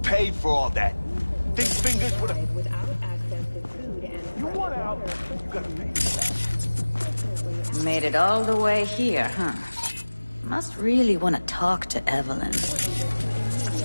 for all that? Think fingers with a... You want out, you gotta pay for that. Made it all the way here, huh? Must really want to talk to Evelyn.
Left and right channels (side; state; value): both; inverted; correlation -1.00